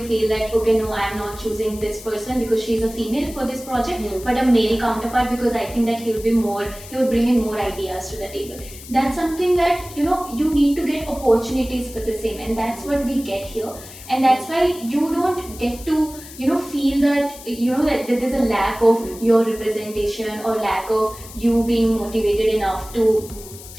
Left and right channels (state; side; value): noise; left; hiss, 16 dB below the sound